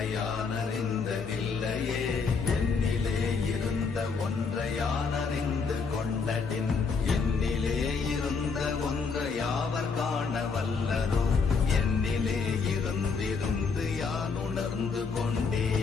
யானறிந்ததில்லையே, என்னிலே இருந்த ஒன்றை யானறிந்து கொண்டடின், என்னிலே இருந்த ஒன்றை யாவர் காண வல்லரோ, என்னிலே இருந்திருந்து யான் உணர்ந்து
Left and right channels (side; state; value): right; quieter; 5.0 dB